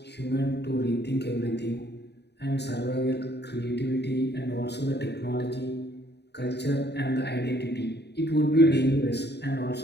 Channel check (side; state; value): right; late; 0.49 ms